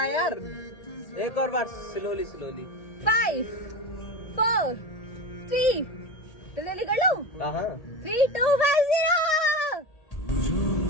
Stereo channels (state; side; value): late; right; 1.8 ms